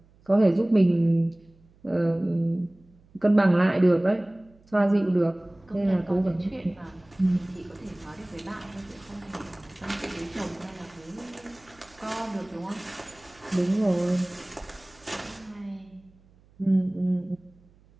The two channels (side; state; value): right; noise; hum, 29 dB below the sound